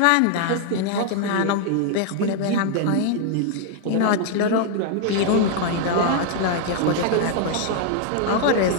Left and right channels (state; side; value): different; both; correlation 0.00